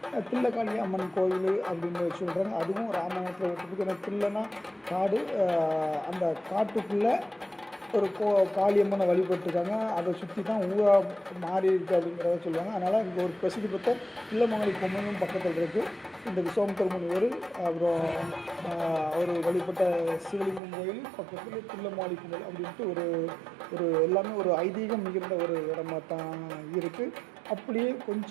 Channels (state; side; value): drops out; left; at 20.6 s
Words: தில்லக்காளி அம்மன் கோயில் அப்படின்னு சொல்கிறாங்க. அதுவும் ராமாயணத்தில் ஒத்து போகுது. ஏன்னா தில்லைனா காடு, அந்த காட்டுக்குள்ளே ஒரு காளியம்மனை வழிபட்டுருக்காங்க. அதை சுற்றி தான் ஊராக மாறி இருக்குது அப்படிங்கிறத சொல்லுவாங்க. அதனால் இங்கே ஒரு பிரசித்தி பெற்ற தில்லமங்கலி பொம்மனும் பக்கத்தில் இருக்குது. இந்த விஸ்வாமித்திர முனிவர் அப்புறம் அவர் வழிபட்ட சிவலிங்கம் கோயில் பக்கத்தில் தில்லமாலி பொங்கல் அப்படின்ட்டு ஒரு ஒரு எல்லாமே ஒரு ஐதீகம் மிகுந்த ஒரு இடமா தான் இருக்குது. அப்படியே